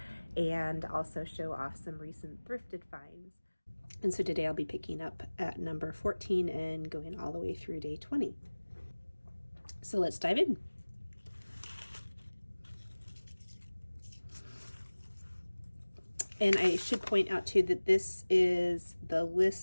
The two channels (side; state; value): both; inverted; correlation -1.00